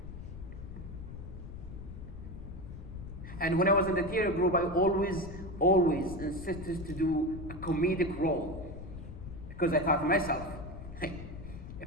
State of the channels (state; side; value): noise; left; rumble, 11 dB below the sound